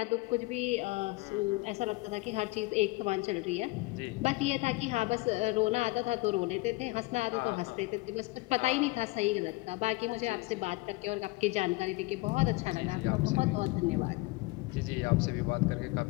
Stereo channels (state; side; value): quieter; right; 22.9 dB